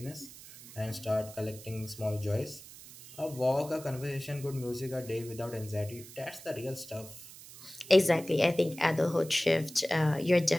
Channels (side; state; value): right; noise; hiss, 17 dB below the sound